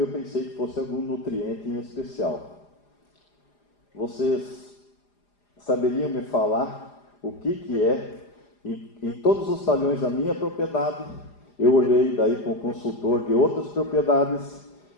pensei que fosse algum nutriente em especial. Vocês saberiam me falar o que é? Em todos os talhões da minha propriedade, eu olhei daí com o consultor de outras propriedades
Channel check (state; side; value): late; right; 4.9 ms